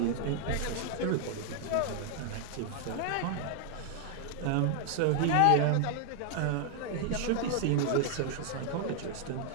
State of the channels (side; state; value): both; different; correlation 0.00